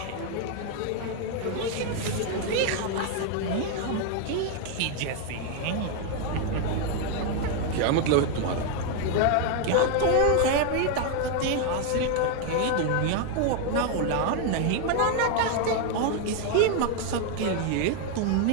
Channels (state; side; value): different; both; correlation 0.01